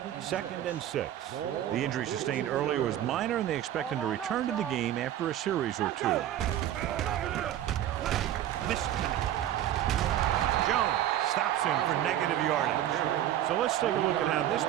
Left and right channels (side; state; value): left; quieter; 12.0 dB